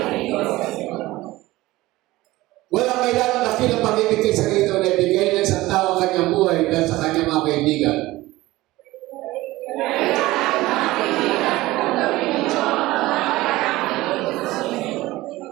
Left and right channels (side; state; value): left; quieter; 18.4 dB